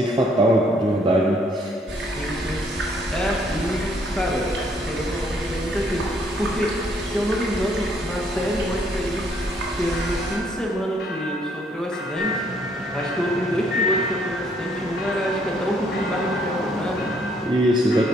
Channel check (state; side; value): normal; both; correlation 0.67